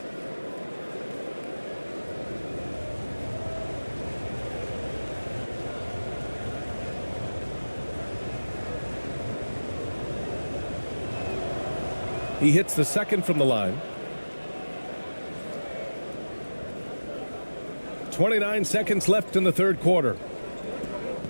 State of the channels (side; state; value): both; inverted; correlation -1.00